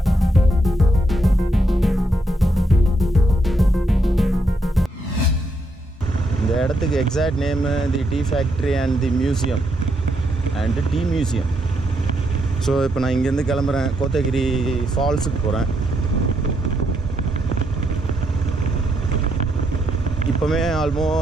இந்த இடத்துக்கு exact name the tea factory and the museum and tea museum. So இப்போ நான் இங்கேருந்து கிளம்புறேன், கோத்தகிரி ஃபால்ஸுக்கு போகிறேன். இப்போவே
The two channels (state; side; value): normal; both; correlation 0.78